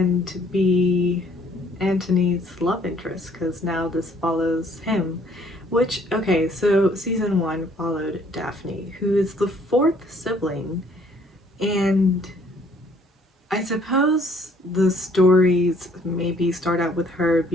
be Antony's love interest, because now this follows him. Which, okay, so season 1 followed Daphne, who is the 4th sibling, and I suppose the stories maybe start out with her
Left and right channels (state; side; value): normal; both; correlation 0.62